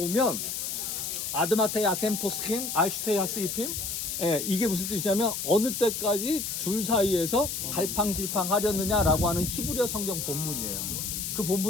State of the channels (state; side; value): noise; left; hiss, 3 dB below the sound